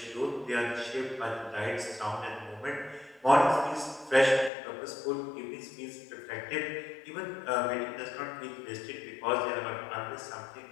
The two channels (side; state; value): right; drops out; at 4.5 s